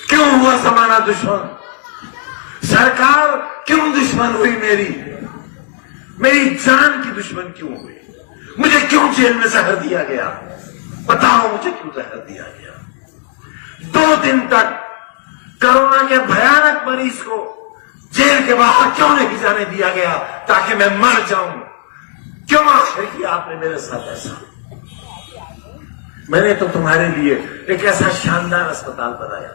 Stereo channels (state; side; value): silent; right; 69 dB below the other